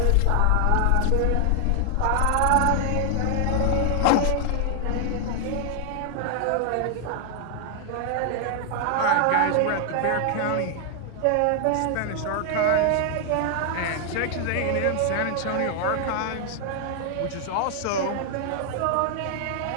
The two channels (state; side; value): different; both; correlation 0.00